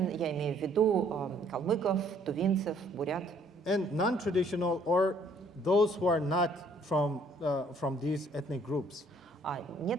я имею в виду калмыков, тувинцев, бурят. And non-traditional or those who are not from these ethnic groups. А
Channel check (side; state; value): both; normal; correlation 0.62